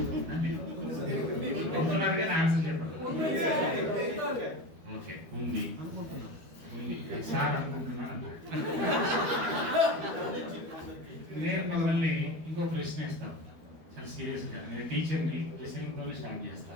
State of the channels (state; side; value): late; left; 12 ms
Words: అవుతున్నారు కానీ ఆన్సర్ చెప్పండి. ఓకే, ఉంది సార్ అనుకుంటున్నాను. నేను మిమ్మల్ని ఇంకో ప్రశ్న ఇస్తాను, చాలా సీరియస్గా. నేను టీచర్ని ప్రశ్నతో స్టార్ట్